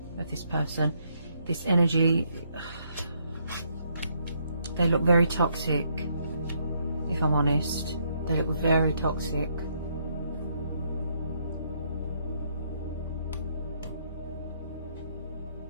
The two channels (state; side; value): inverted; both; correlation -0.72